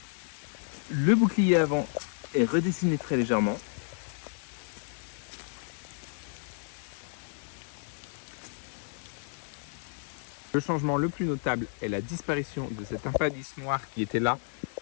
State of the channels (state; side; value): silent; right; digital silence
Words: Le bouclier avant est redessiné très légèrement. Le changement le plus notable est la disparition de cet impadis noir qui était là,